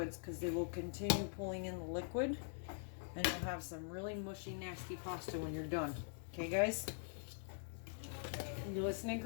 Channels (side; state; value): right; silent; digital silence